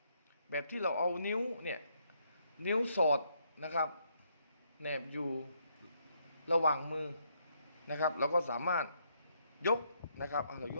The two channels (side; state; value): both; inverted; correlation -0.74